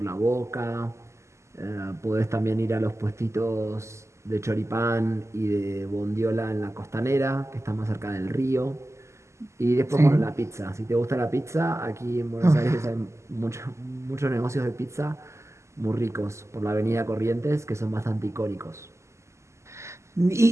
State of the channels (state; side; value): late; left; 0.13 ms